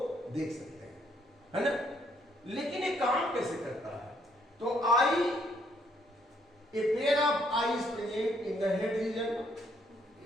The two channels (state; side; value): normal; both; correlation 0.69